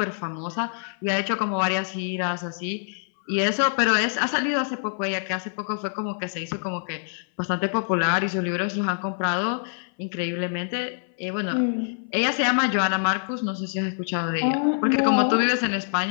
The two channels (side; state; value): right; silent; 57 dB below the other